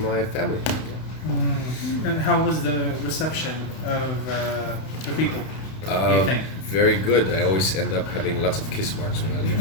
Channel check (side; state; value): right; late; 31 ms